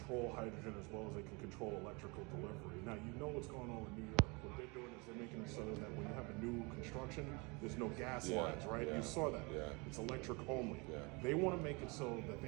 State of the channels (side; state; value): left; quieter; 28.8 dB